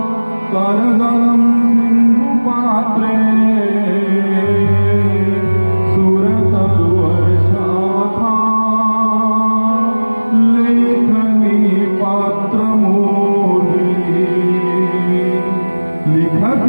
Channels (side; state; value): both; inverted; correlation -1.00